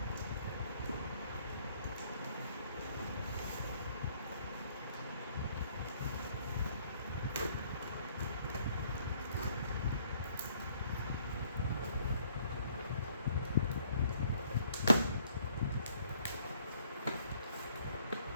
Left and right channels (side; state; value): both; inverted; correlation -0.64